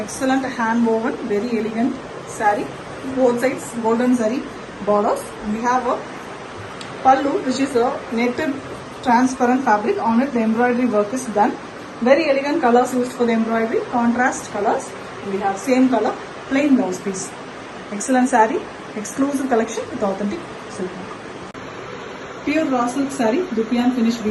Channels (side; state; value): both; identical; correlation 1.00